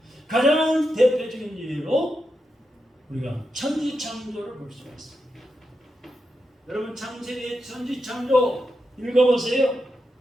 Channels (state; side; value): normal; both; correlation 0.87